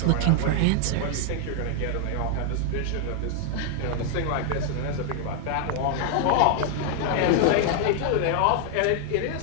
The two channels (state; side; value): different; both; correlation 0.00